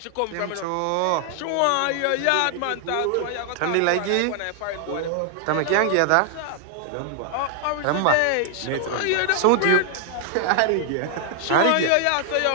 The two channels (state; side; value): different; both; correlation 0.00